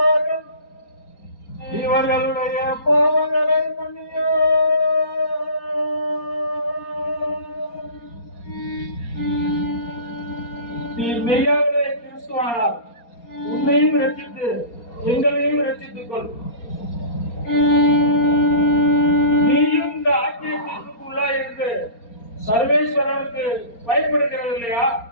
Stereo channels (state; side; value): late; right; 4.3 ms